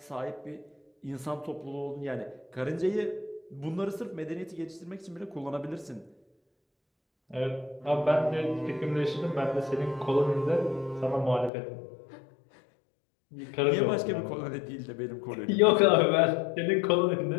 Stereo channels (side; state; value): right; drops out; at 11.5 s